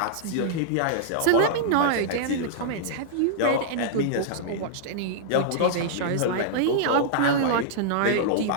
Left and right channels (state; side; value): different; both; correlation -0.02